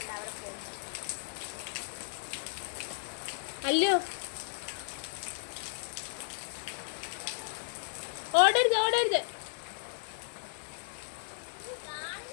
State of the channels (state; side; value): silent; right; 55 dB below the other